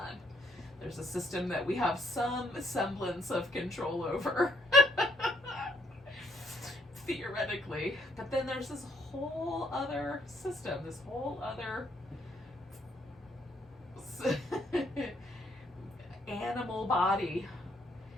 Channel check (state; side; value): normal; both; correlation 0.70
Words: There's a system that we have some semblance of control over, theoretically, but then there's this whole other system, this whole other animal body